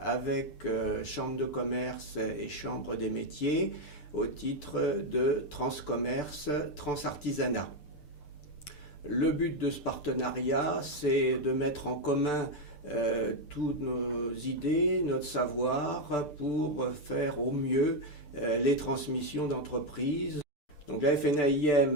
Chambre de commerce et Chambre des métiers au titre de Transcommerce, Transartisanat. Le but de ce partenariat, c'est de mettre en commun toutes nos idées, notre savoir pour faire au mieux les transmissions d'entreprises. Donc la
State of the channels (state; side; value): late; right; 6.8 ms